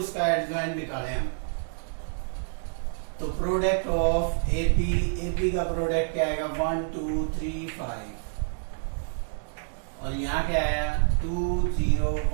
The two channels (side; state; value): left; silent; digital silence